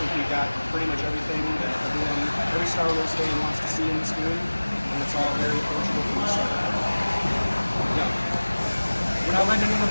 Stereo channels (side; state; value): both; inverted; correlation -1.00